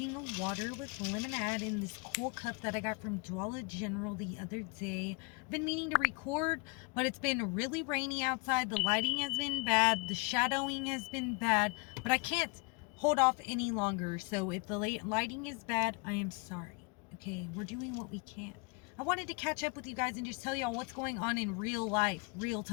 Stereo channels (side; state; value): right; quieter; 30.0 dB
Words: water with lemonade in this cool cup that I got from Dollar General the other day. I've been meaning to record, but it's been really rainy outside. The lighting has been bad. The shadowing has been bad, but I can't hold off any longer. So if the lighting is bad, I am sorry. Okay, we're doing what we can. I wanted to catch up with you guys and just tell y'all what's going on in real life, real